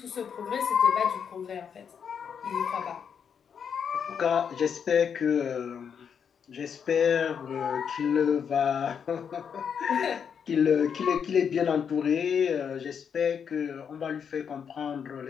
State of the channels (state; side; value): quieter; right; 7.2 dB